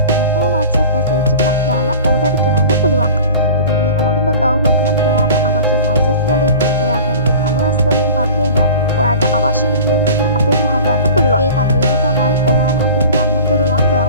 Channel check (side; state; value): both; inverted; correlation -0.40